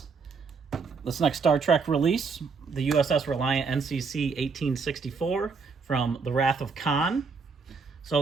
this next Star Trek release, the USS Reliant NCC 1864 from The Wrath of Khan. So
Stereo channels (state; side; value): quieter; left; 5.0 dB